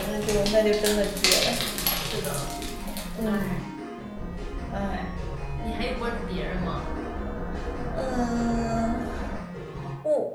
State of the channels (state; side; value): identical; both; correlation 1.00